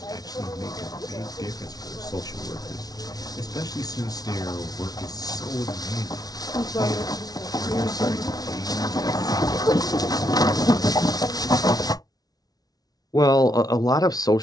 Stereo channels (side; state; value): right; late; 0.19 ms